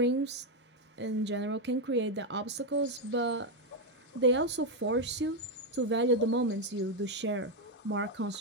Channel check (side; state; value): both; normal; correlation 0.04